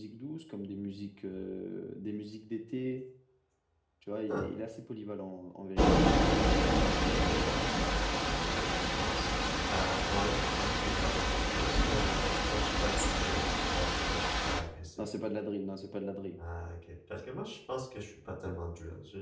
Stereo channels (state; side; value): identical; both; correlation 1.00